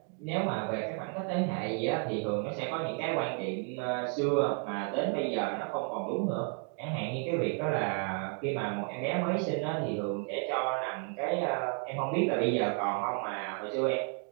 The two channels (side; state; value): left; quieter; 38.9 dB